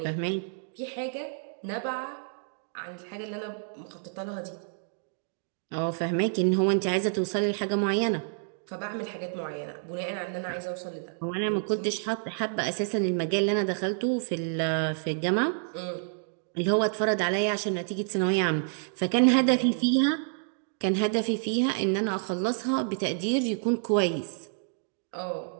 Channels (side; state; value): left; silent; digital silence